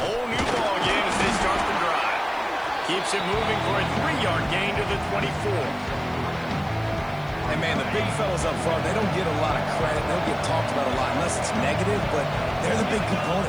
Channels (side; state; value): left; noise; hiss, 28 dB below the sound